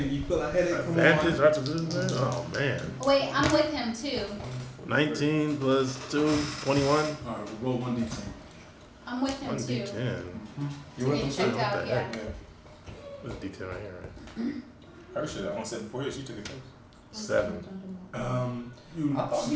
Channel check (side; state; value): both; identical; correlation 1.00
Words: feel a headache. Come Advantage, on. right to this man? Oh man. wait, I'm with him too. 19 plus 2, 21. All right, we'll roll 1d10. I'm with him 1 too. d10. You with them Get checked too? out, What the yeah. heck? What's the d10 right here, right? Her shit, I only said before, she took it first. 7. You I thought he